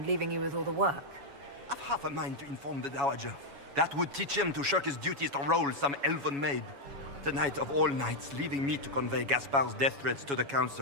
leaving you with all the work. I've half a mind to inform the Dowager. That would teach him to shirk his duties to roll some elven maid. Tonight of all nights, leaving me to convey Gaspard's death threats to the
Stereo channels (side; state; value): left; late; 7.2 ms